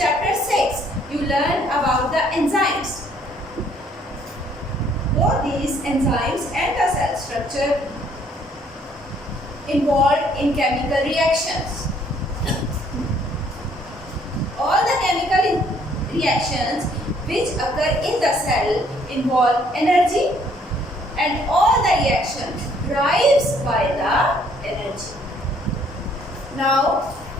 6, you learned about the enzymes. Both these enzymes and the cell structure involved in chemical reactions. All the chemical reactions which occur in the cell involve energy, and all the reactions drives by the energy. Now,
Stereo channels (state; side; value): normal; both; correlation 0.63